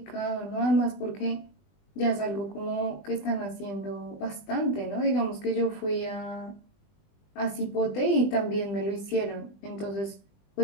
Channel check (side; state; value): right; late; 20 ms